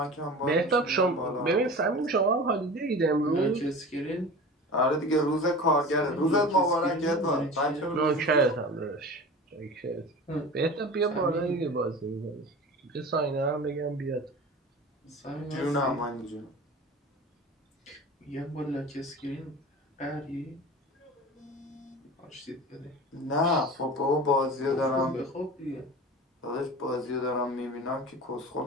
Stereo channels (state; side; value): normal; both; correlation 0.35